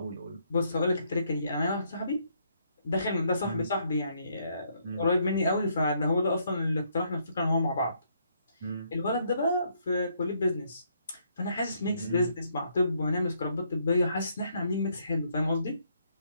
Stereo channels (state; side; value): inverted; both; correlation -0.71